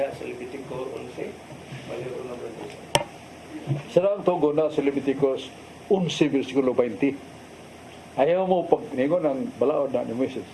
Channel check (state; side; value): identical; both; correlation 1.00